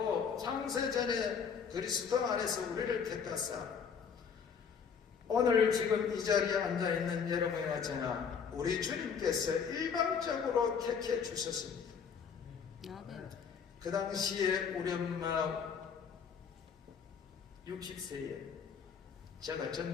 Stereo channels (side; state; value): right; quieter; 6.6 dB